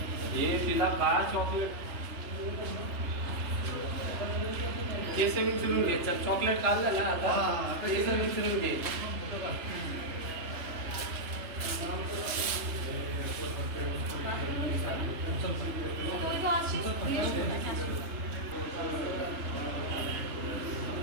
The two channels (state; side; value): late; left; 3.3 ms